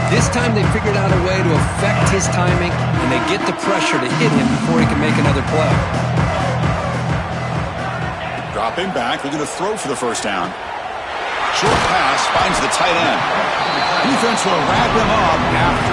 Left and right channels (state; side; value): identical; both; correlation 1.00